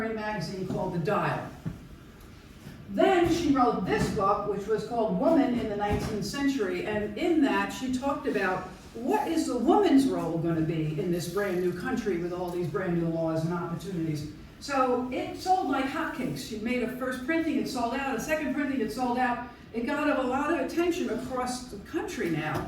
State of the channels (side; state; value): both; identical; correlation 1.00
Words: magazine called The Dial. Then she wrote this book, which was called Woman in the 19th Century, and in that she talked about what is the woman's role going to be in this brand new country with all these brand new laws and opportunities. So it sold like hotcakes. She made a first printing, it sold out, a second printing, it sold out. It got a lot of attention across the country now.